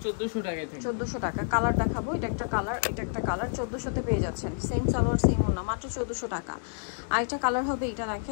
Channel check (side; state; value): right; silent; digital silence